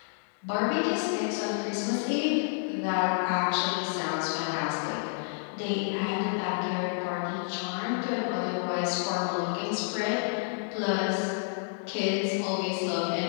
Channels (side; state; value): right; silent; 58 dB below the other